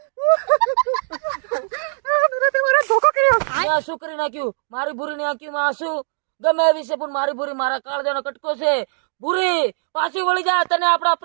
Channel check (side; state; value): left; silent; digital silence